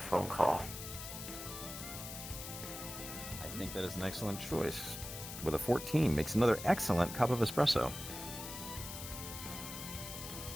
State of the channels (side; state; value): left; noise; hiss, 9 dB below the sound